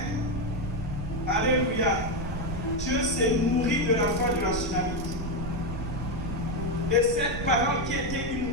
Alléluia. Dieu s'est nourri de la foi de la Tsunamite. Et cette parole qui était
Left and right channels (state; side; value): noise; right; rumble, 8 dB below the sound